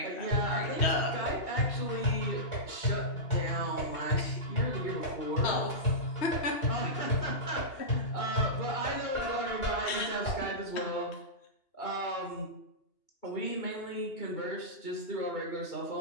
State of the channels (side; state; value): right; late; 2.8 ms